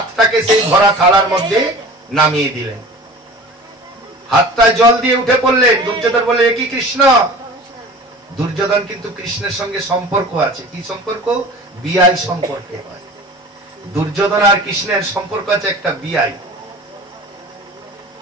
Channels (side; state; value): both; normal; correlation 0.40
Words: সেই ভরা থালার মধ্যে নামিয়ে দিলেন। হাতটায় জল দিয়ে উঠে পড়লেন। দুর্যোধন বলে, কি কৃষ্ণ? দুর্যোধন কিন্তু কৃষ্ণের সঙ্গে সম্পর্ক আছে। কি সম্পর্ক? বিআই সম্পর্ক হয়। দুর্যোধন আর কৃষ্ণের সম্পর্ক আছে একটা বিআই।